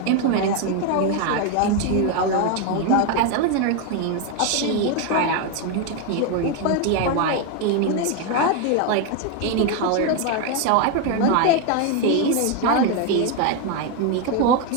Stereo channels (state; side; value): different; both; correlation 0.01